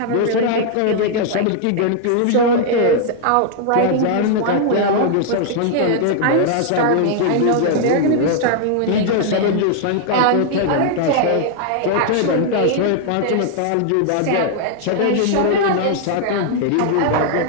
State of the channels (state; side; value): different; both; correlation 0.00